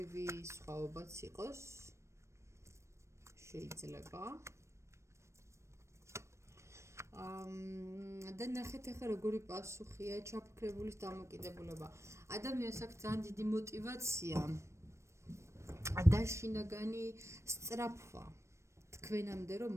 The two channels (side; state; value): left; late; 0.13 ms